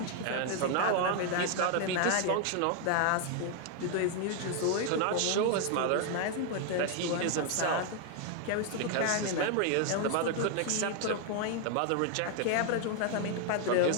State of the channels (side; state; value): both; different; correlation 0.00